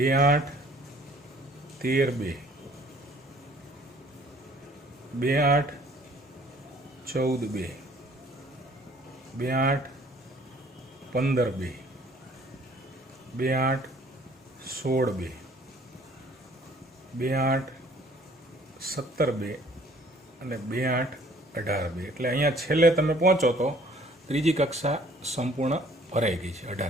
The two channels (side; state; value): both; normal; correlation 0.57